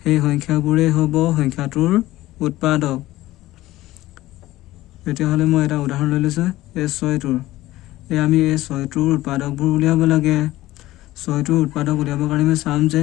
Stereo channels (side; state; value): right; quieter; 16.6 dB